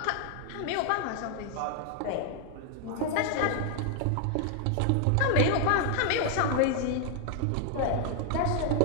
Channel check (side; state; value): both; different; correlation 0.00